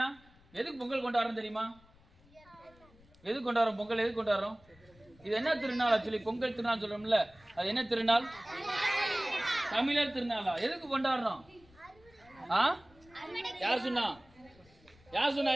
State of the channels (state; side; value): noise; left; rumble, 27 dB below the sound